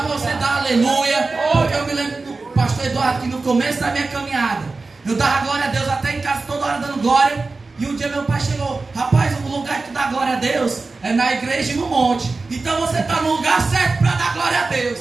você dar aleluia, porque eu me lembro do pastor Eduardo que no começo da minha caminhada, eu dava glória a Deus até em casa, toda hora dando glória. E um dia meu pai chegou: rapaz, o lugar que tu dá glória a Deus é na igreja e no monte. Então você está no lugar certo para dar glória a Deus.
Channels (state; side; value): quieter; left; 3.7 dB